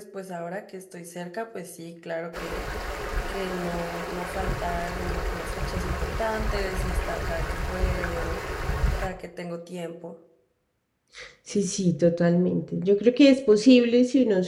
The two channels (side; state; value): both; identical; correlation 1.00